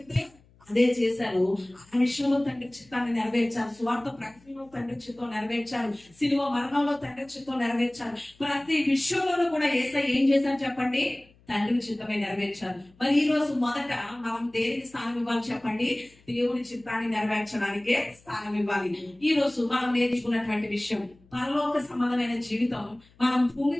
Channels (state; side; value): noise; left; hum, 30 dB below the sound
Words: అదే చేశారు. ఆ విషయంలో తండ్రి చిత్తాన్ని నెరవేర్చారు. స్వార్థ ప్రకటనలో తండ్రి చిత్తం నెరవేర్చారు. శిలువ మరణంలో తండ్రి చిత్తం నెరవేర్చారు. ప్రతి విషయంలోనూ కూడా యేసయ్య ఏం చేశారు చెప్పండి? తండ్రి చిత్తమే నెరవేర్చారు. మరి ఈ రోజు మొదట మనం దేనికి స్థానం ఇవ్వాలి చెప్పండి? దేవుని చిత్తాన్ని నెరవేర్చడానికే స్థానం ఇవ్వాలి. ఈ రోజు మనం నేర్చుకున్నటువంటి విషయం, పరలోక సంబంధమైన జీవితం మనం భూమి